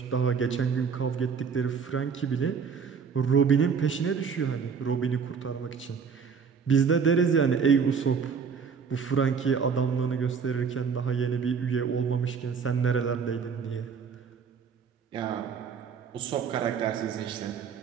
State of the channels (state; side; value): quieter; left; 6.1 dB